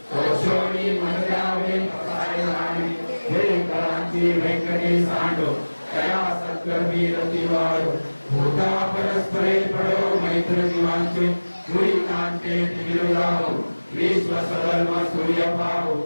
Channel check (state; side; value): inverted; both; correlation -1.00